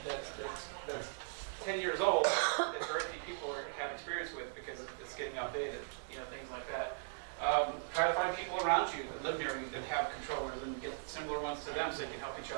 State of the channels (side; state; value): left; silent; 52 dB below the other